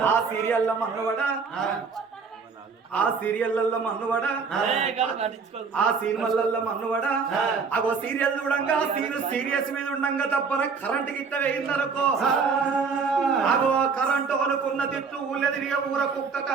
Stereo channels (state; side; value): quieter; left; 5.3 dB